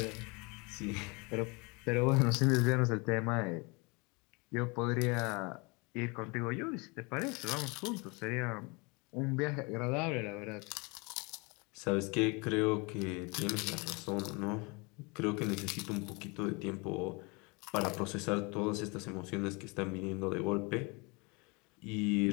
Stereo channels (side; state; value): right; quieter; 28.7 dB